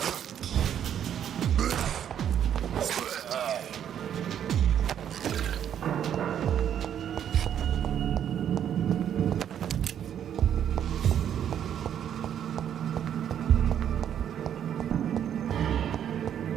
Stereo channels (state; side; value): quieter; left; 9.5 dB